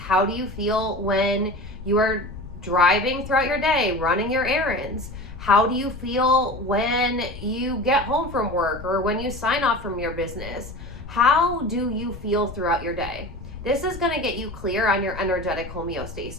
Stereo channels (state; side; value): noise; left; rumble, 13 dB below the sound